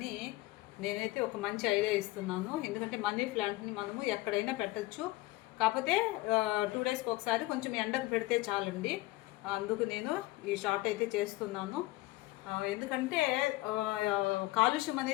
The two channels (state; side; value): quieter; right; 19.3 dB